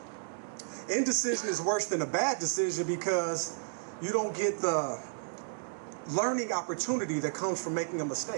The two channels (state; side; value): silent; left; digital silence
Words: Indecision is worse than a bad decision because you don't get the learning opportunity that comes from making a